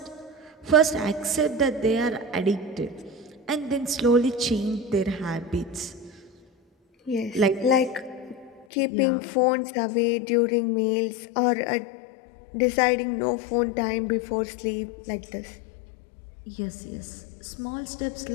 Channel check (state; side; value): drops out; right; at 8.7 s